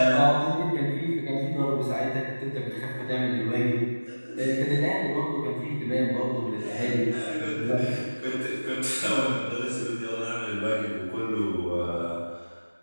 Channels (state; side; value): inverted; both; correlation -1.00